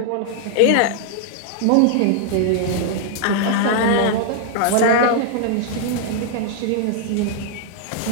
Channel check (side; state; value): both; different; correlation -0.01